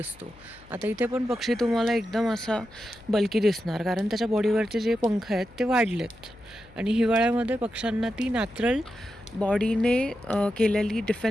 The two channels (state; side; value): noise; left; hum, 24 dB below the sound